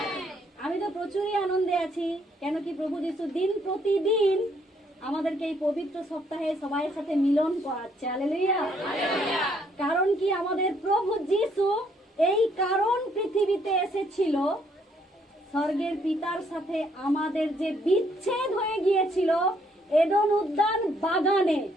আমি তো প্রচুরই আনন্দে আছি। কেন কি প্রভু যিশু দিন প্রতিদিন আমাদেরকে এই পবিত্র সপ্তাহে সবাইয়ের সাথে মিলন করাচ্ছে। হালেলুয়া। কারণ কি আমাদের প্রভু যিশু এই কারণ পৃথিবীতে এসেছিল, স্বর্গের পিতার সাথে আমাদের যে বিচ্ছেদ হয়ে গিয়েছিল এডেন উদ্যান বাগানে,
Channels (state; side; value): normal; both; correlation 0.69